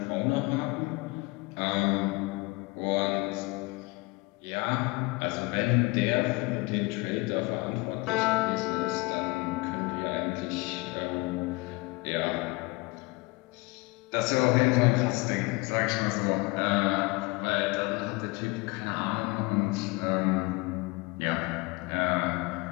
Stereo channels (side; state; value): right; quieter; 25.0 dB